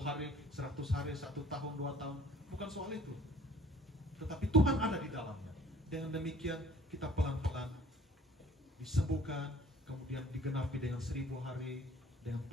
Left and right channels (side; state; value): both; normal; correlation 0.53